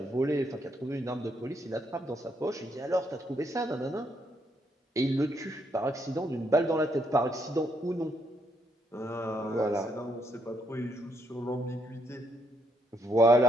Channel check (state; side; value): normal; both; correlation 0.75